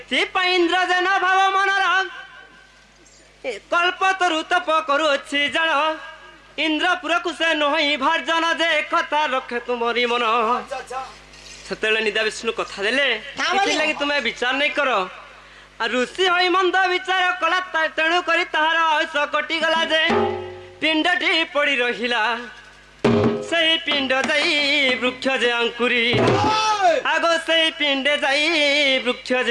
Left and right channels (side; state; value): both; identical; correlation 1.00